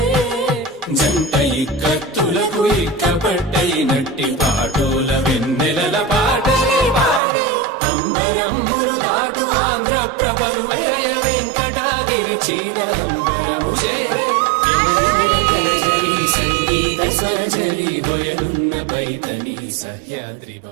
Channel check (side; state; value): left; drops out; at 7.2 s